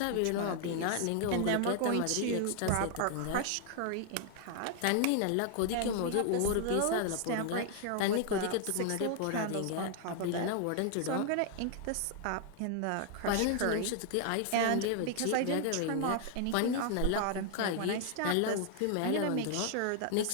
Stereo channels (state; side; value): different; both; correlation 0.00